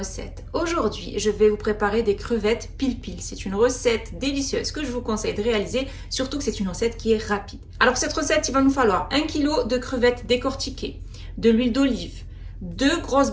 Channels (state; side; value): identical; both; correlation 1.00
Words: Aujourd'hui, je vais vous préparer des crevettes pil-pil. C'est une recette délicieuse que je vous conseille de réaliser, surtout que c'est une recette qui est rapide. Alors pour cette recette, il va nous falloir 1 kg de crevettes décortiquées, de l'huile d'olive, 2 grosses